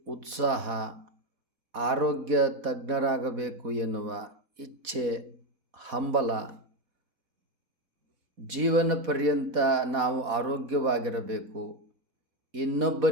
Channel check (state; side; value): late; left; 4.1 ms